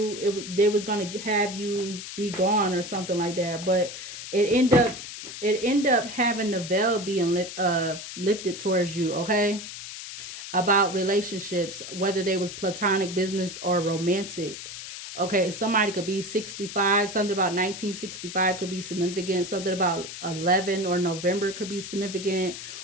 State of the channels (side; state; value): left; noise; hiss, 10 dB below the sound